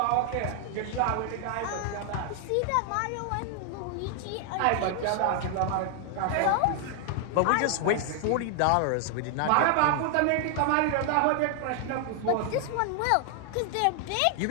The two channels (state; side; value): different; both; correlation 0.00